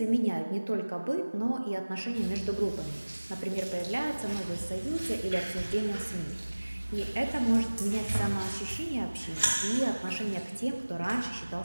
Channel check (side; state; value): both; inverted; correlation -1.00